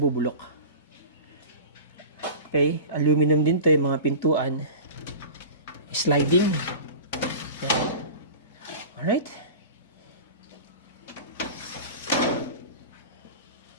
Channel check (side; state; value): both; inverted; correlation -0.34